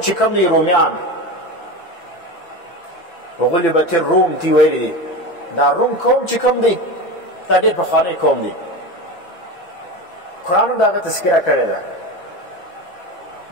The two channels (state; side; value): late; right; 6.0 ms